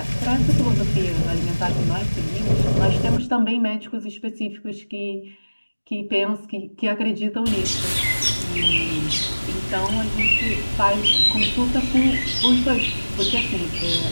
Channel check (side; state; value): both; inverted; correlation -1.00